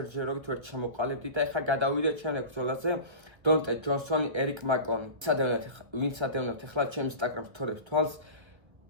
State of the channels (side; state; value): left; late; 1.5 ms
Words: ვერ ჩამოყალიბდი და ეხლა გადავიდეთ შემდეგ ბრძოლაზე. დონტე ჯონსონი, ერიკ მაკონი. ვინც ადევნებთ ეხლა ჩემ Instagram story-ს თვალს